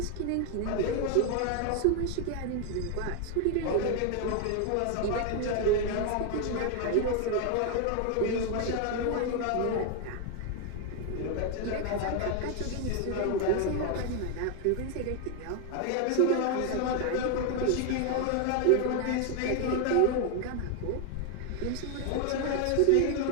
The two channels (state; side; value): different; both; correlation 0.01